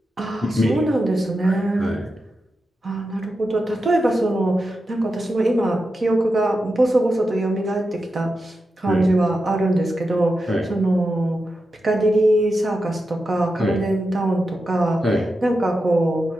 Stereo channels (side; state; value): both; normal; correlation 0.89